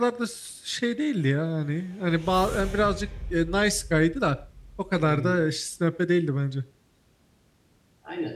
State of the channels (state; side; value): identical; both; correlation 1.00